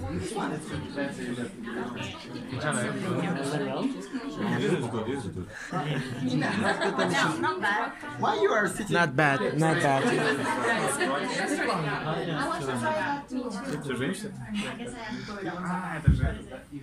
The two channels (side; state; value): both; identical; correlation 1.00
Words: Why you are sitting? Not bad, not bad.